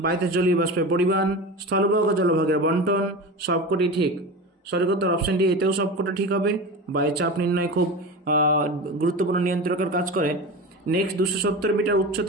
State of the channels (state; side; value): normal; both; correlation 0.28